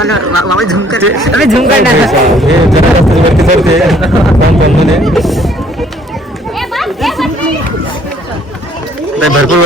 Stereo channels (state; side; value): normal; both; correlation 0.61